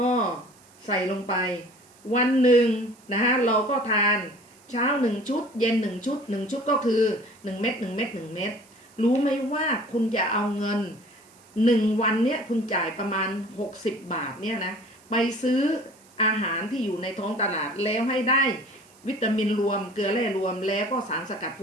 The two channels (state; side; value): noise; right; hiss, 28 dB below the sound